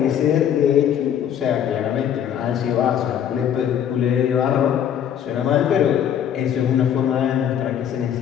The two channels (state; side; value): quieter; right; 9.4 dB